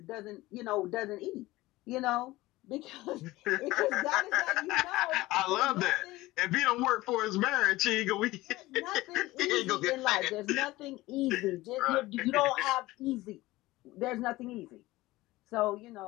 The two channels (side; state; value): right; quieter; 18.7 dB